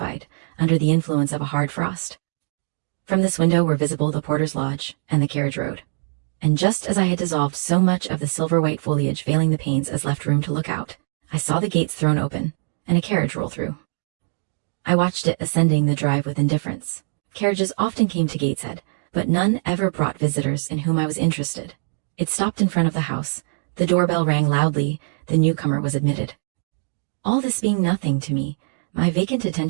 under the influence of a hard frost. From this window were visible the porter's lodge and the carriage road, and just as I had dissolved so much of the silver-white foliage veiling the panes as left room to look out, I saw the gates thrown open and a carriage roll through. I watched it ascending the drive with indifference. Carriages often came to Gateshead, but none ever brought visitors in whom I was interested. It stopped in front of the house. The doorbell rang loudly. The newcomer was admitted. All this being nothing to me, my vacant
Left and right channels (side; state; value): left; silent; digital silence